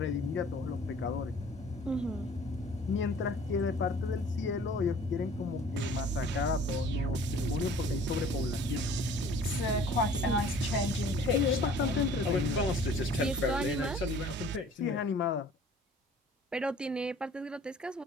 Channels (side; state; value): both; normal; correlation 0.50